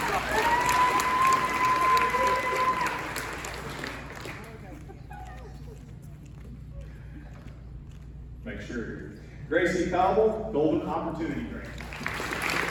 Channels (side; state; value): both; identical; correlation 1.00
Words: Make sure. Gracie Cobble, Golden Opportunity Grant.